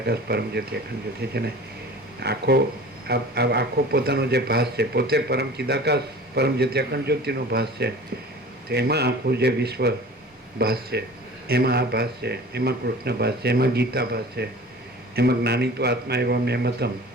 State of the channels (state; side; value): normal; both; correlation 0.41